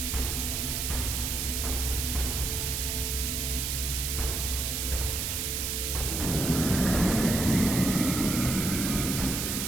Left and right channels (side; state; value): right; noise; hiss, 1 dB below the sound